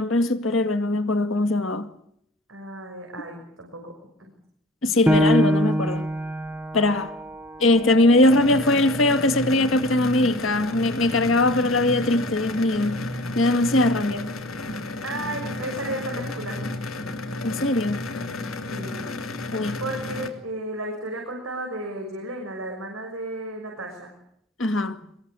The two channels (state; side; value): normal; both; correlation 0.43